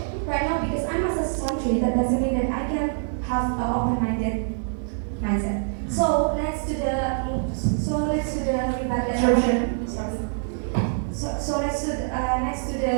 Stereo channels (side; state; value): left; silent; digital silence